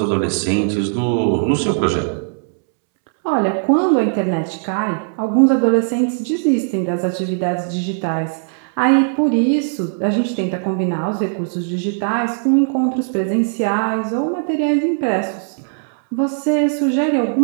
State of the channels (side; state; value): left; silent; 67 dB below the other